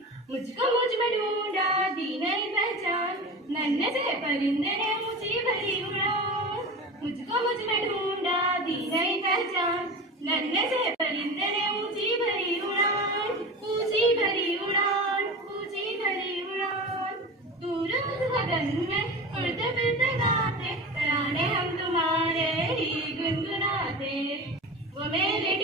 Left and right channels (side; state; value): both; normal; correlation 0.30